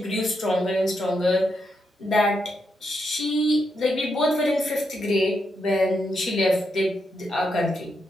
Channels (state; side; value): normal; both; correlation 0.82